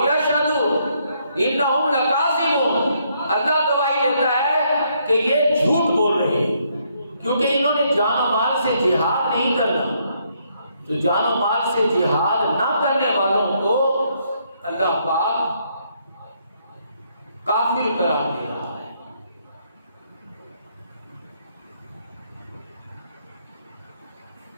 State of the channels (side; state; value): both; inverted; correlation -0.72